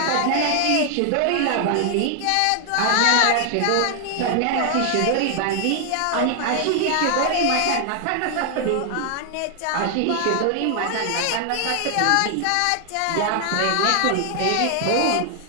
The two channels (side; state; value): both; different; correlation 0.00